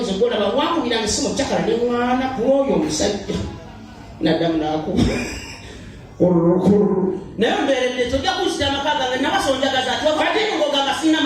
golaba wankubiranga esimu kyakala ne mwana kuoyo omusajja naddamu n'akuba naye mbeeredde tojja kuzikira amaka gange nabasonjagaza ati wakatiogamba sina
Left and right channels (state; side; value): identical; both; correlation 1.00